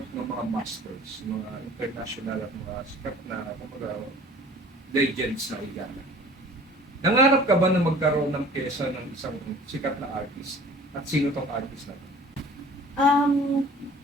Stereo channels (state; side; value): normal; both; correlation 0.47